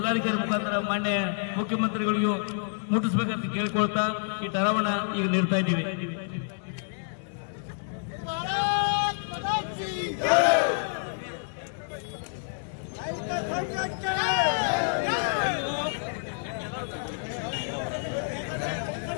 ಮುಖಾಂತರ ಮಾನ್ಯ ಮುಖ್ಯಮಂತ್ರಿಗಳಿಗೂ ಮುಟ್ಟಿಸಬೇಕಂತ ಕೇಳ್ಕೊಳ್ತಾ ಈ ಠರಾವನ್ನ ಈಗ ನೀಡ್ತಾ ಇದ್ದೀವಿ.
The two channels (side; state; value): right; silent; digital silence